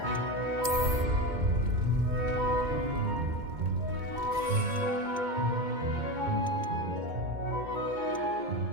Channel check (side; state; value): left; late; 2.2 ms